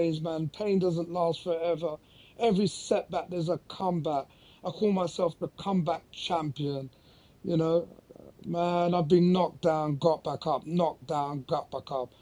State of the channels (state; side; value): identical; both; correlation 1.00